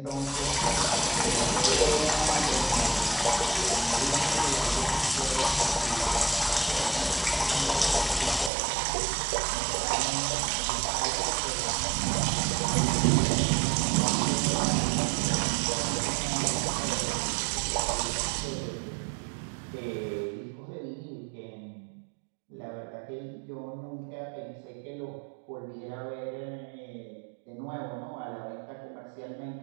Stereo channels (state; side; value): drops out; left; at 8.5 s